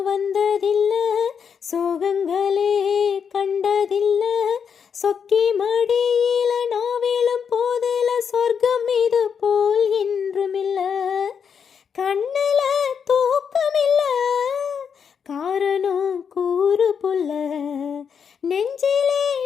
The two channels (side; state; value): right; quieter; 6.9 dB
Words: வந்ததில்ல சோகங்களே கண்டதில்ல சொக்கி மடியில நாவிலும் போதில சொர்க்கம் இது போல் என்றுமில்ல கண்ணுல தூக்கமில்ல காரணம் கூறு புல்ல நெஞ்சிலே